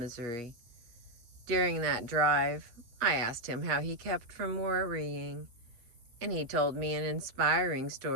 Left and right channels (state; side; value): late; left; 8.4 ms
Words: During that drive, I asked him how he kept from worrying, and he told me an inspiring